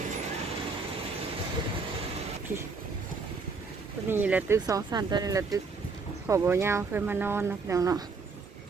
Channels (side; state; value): left; quieter; 4.5 dB